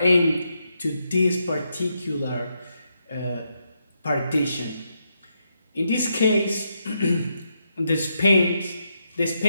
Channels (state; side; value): inverted; both; correlation -0.81